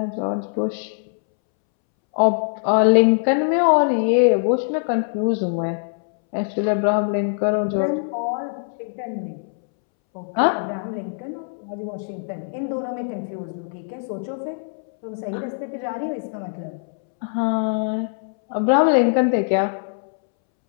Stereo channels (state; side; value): silent; right; 64 dB below the other